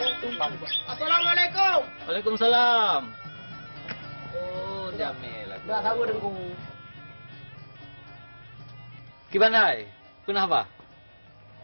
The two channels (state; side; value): inverted; both; correlation -1.00